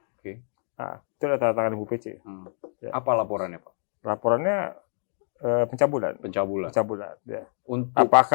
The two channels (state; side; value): silent; right; digital silence